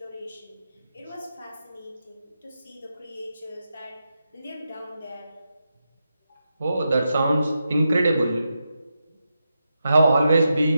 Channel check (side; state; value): both; inverted; correlation -0.87